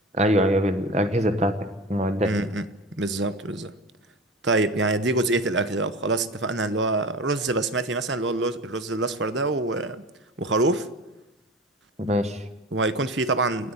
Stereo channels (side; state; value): both; normal; correlation 0.32